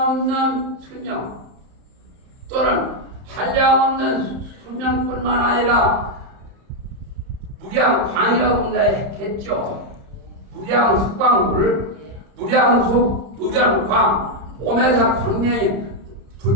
수명 또는 한량없는 수명뿐만 아니라 무량광이라고 했겠죠. 무량수광물, 무량수, 무량광, 오메사 광명이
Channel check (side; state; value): left; late; 30 ms